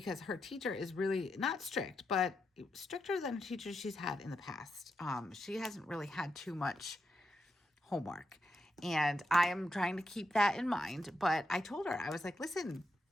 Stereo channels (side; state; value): both; normal; correlation 0.84